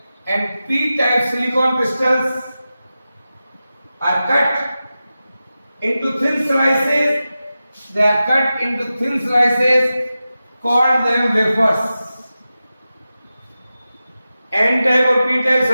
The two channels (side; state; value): both; inverted; correlation -0.93